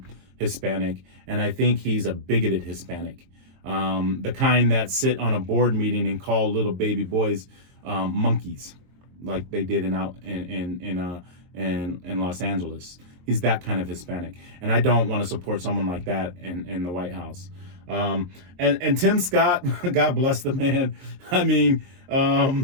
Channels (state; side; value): late; left; 22 ms